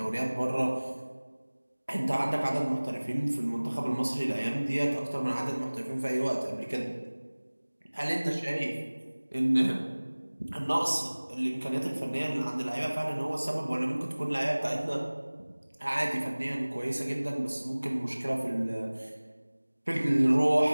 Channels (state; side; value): inverted; both; correlation -1.00